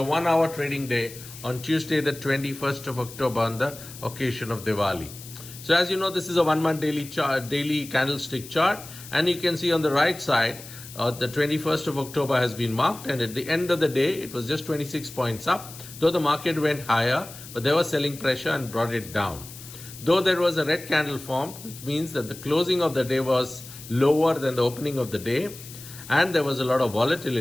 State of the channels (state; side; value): noise; left; hiss, 15 dB below the sound